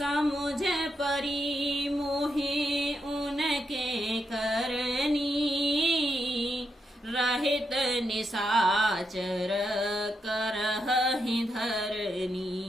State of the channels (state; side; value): normal; both; correlation 0.83